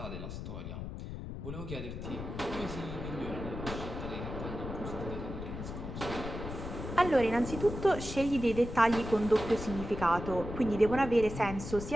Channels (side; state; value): left; noise; rumble, 8 dB below the sound